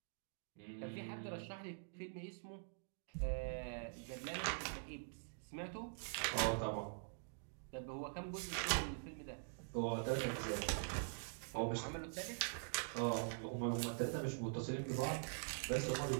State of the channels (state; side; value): silent; left; digital silence